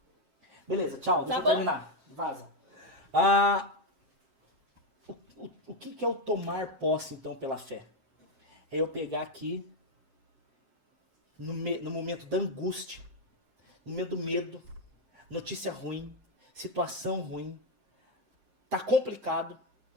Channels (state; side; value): late; left; 7.6 ms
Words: Beleza, tchau, deixa eu bom? terminar. Vaza. O que é o tomar posse, então, pela fé? É eu pegar aqui, no momento da angústia, no momento do medo, notícia ruim, situação ruim, tá complicado,